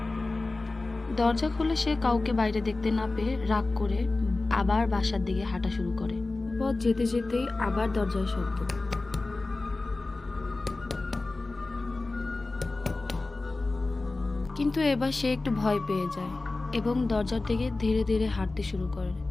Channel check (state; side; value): quieter; right; 3.3 dB